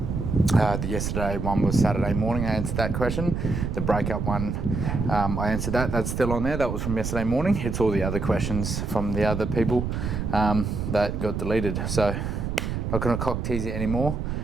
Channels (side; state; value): right; noise; rumble, 3 dB below the sound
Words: The yesterday one was Saturday morning. I answered that question. The breakup one, I answered that. That's still on there. That was from yesterday morning. It's all the other questions from the other people that got deleted. So not going to cock tease it anymore.